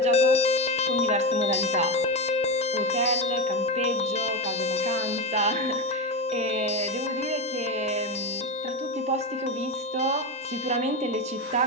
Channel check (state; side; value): normal; both; correlation 0.16